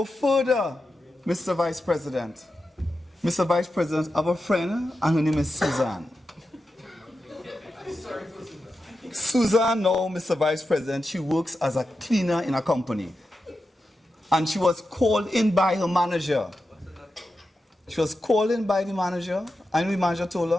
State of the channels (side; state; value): both; normal; correlation 0.90